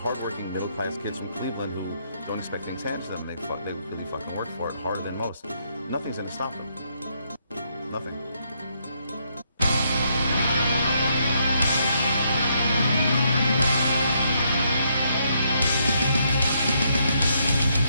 middle-class kids from Cleveland who don't expect things handed to them. They really fucking work for it harder than most. Nothing's going to stop them. Nothing.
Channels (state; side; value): inverted; both; correlation -0.74